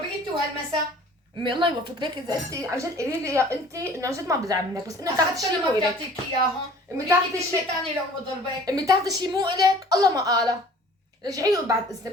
انت وهالمسا. امي الله يوفقك. ليك اذا انت عن جد قولي لي يا انت انه عن جد ما بزعل منك، بس انه تاخذي شيء مو ما الك. بتعطيك اياهم. امي تاخذي تاخذي شيء شيء ثاني لو بضربك. امي تاخذي شيء مو الك، الله ما قاله. رجعي بعد اذنك،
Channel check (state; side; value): normal; both; correlation 0.50